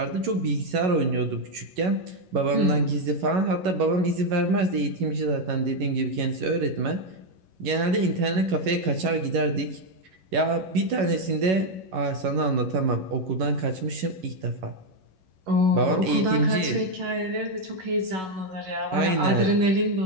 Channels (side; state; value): left; late; 11 ms